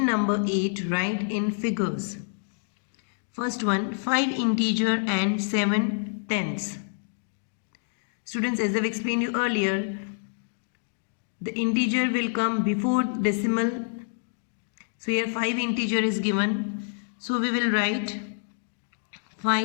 number 8, write in figures. First one, 5 integer and 7 tenths. Students, as I've explained you earlier, the integer will come before decimal. So here 5 integer is given. So we will write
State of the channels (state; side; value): silent; right; digital silence